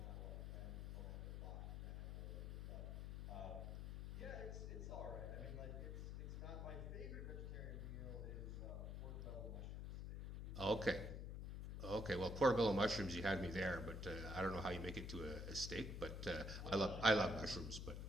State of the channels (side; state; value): left; noise; hum, 5 dB below the sound